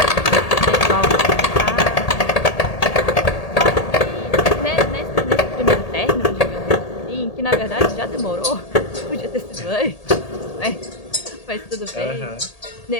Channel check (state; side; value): late; right; 1.8 ms